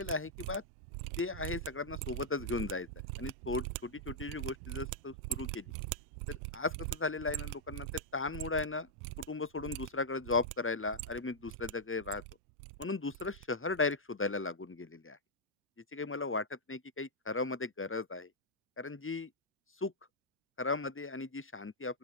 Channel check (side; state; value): both; normal; correlation -0.06